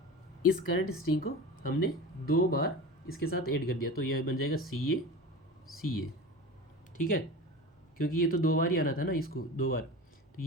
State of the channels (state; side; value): normal; both; correlation 0.32